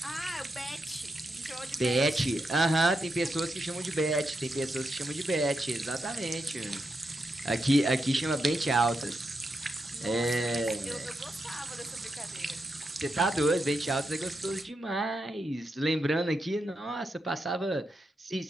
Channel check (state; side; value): normal; both; correlation 0.85